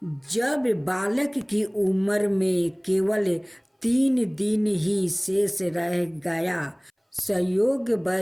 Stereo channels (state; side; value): identical; both; correlation 1.00